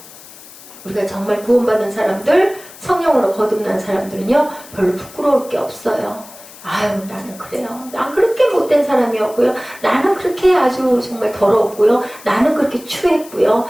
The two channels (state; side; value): noise; left; hiss, 19 dB below the sound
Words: 우리가 정말 구원받은 사람들 성령으로 거듭난 사람들은요 별로 부끄러울 게 없어요. 아유 나는 그래요. 난 그렇게 못된 사람이었고요. 나는 그렇게 아주 정말 더러웠고요. 나는 그렇게 추했고요.